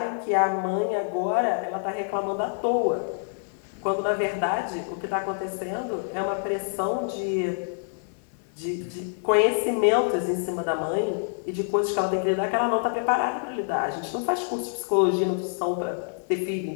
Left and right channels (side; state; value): right; silent; digital silence